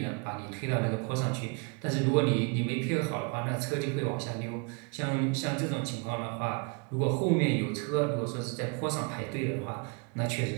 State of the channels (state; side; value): quieter; left; 34.4 dB